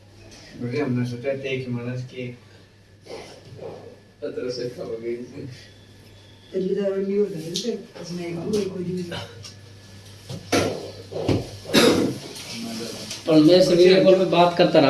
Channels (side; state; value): both; identical; correlation 1.00